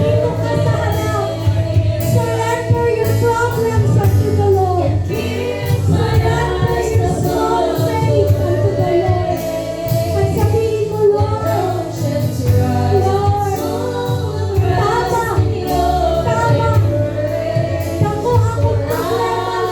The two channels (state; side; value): identical; both; correlation 1.00